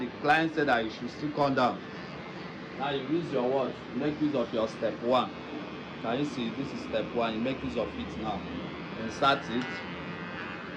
client said that you should still come down. Now you use your what? Make use of your step 1. Can you see? This is step 1. You make use of it now. Insert it.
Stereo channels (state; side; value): identical; both; correlation 1.00